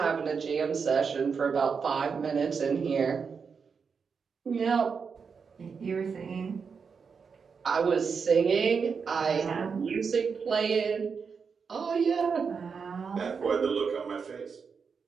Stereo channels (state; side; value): quieter; left; 5.8 dB